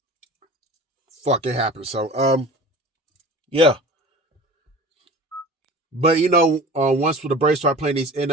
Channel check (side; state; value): both; normal; correlation 0.39